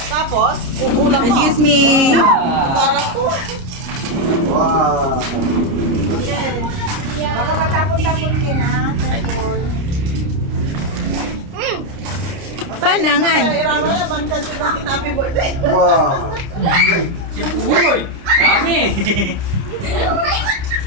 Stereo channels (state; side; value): late; left; 29 ms